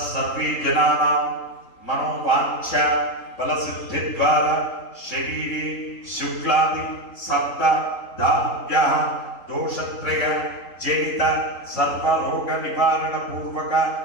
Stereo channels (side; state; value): right; late; 3.8 ms